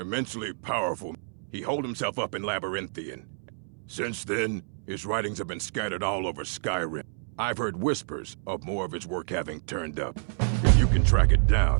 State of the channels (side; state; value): left; silent; 59 dB below the other